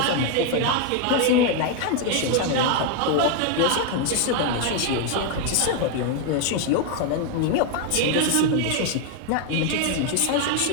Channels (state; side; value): different; both; correlation 0.01